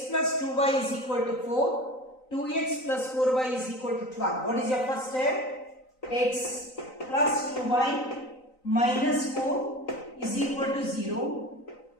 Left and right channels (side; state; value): right; late; 3.9 ms